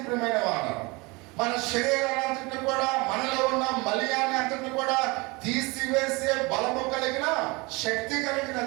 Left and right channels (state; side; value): quieter; left; 25.9 dB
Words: ప్రియమైన వారు. మన శరీరాన్ని కూడా, మనలో ఉన్న మలియాన్ని అంతటి కూడా తీసివేసే బలము కలిగిన శక్తి